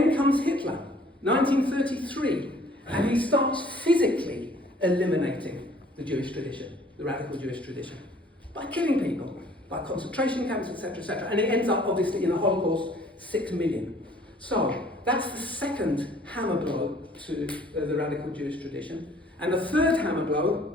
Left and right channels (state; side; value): normal; both; correlation 0.56